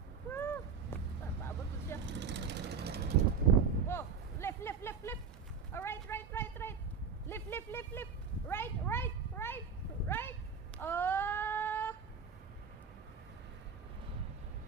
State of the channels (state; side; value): quieter; left; 6.0 dB